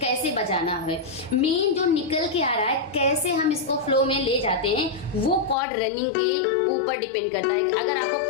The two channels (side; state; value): right; drops out; at 5.6 s